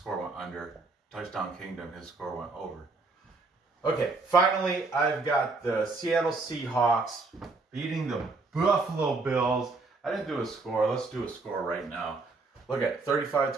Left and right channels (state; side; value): quieter; left; 3.7 dB